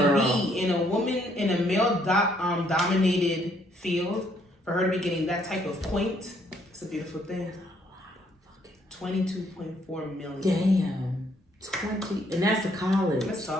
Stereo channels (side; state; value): both; normal; correlation 0.68